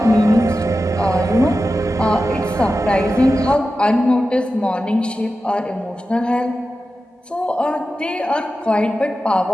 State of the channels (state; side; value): normal; both; correlation 0.92